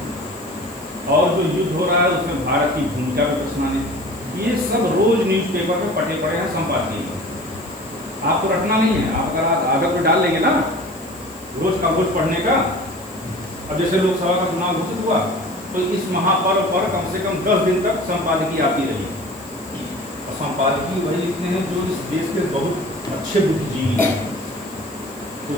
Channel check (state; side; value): noise; right; hiss, 21 dB below the sound